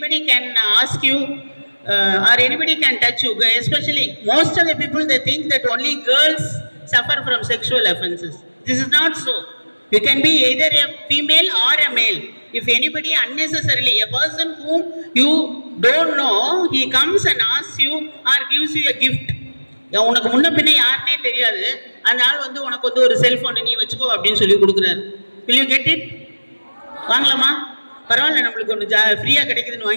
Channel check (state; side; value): inverted; both; correlation -1.00